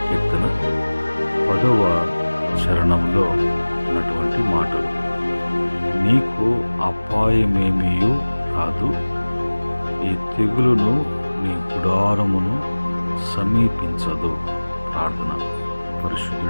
కీర్తన 10వ చరణంలో ఉన్నటువంటి మాటలు. నీకు అపాయమేమీయు రాదు, ఈ తెగులును నీ గుడారమును సమీపించదు. ప్రార్థన.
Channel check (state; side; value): inverted; both; correlation -1.00